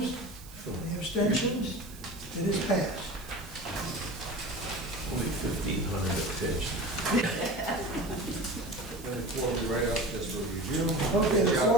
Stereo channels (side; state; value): right; noise; hiss, 19 dB below the sound